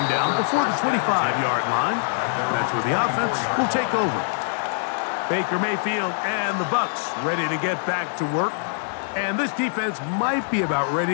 down before the 25-yard line. That's where the offense will take over. Baker Mayfield and the Bucs ready to get back to work. And this defense might be about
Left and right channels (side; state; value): right; silent; 61 dB below the other